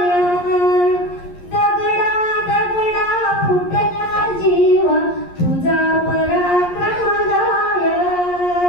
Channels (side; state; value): right; late; 11 ms